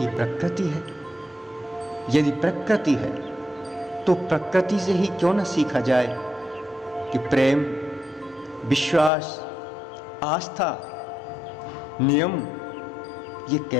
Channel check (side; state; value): right; drops out; at 9.1 s